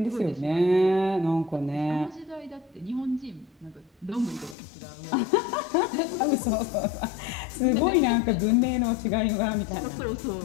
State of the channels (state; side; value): drops out; right; at 4.5 s